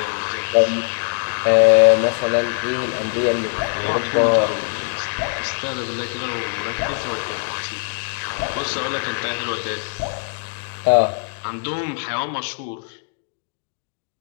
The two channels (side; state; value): right; silent; digital silence